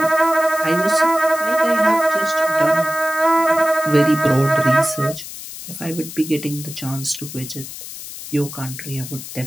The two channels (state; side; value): noise; left; hiss, 12 dB below the sound